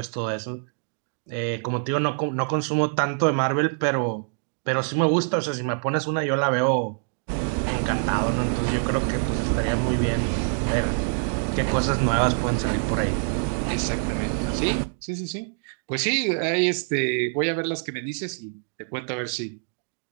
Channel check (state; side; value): silent; left; 62 dB below the other